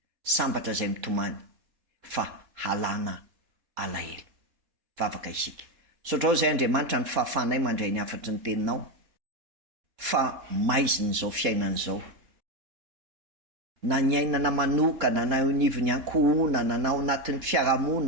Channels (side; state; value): left; late; 3.7 ms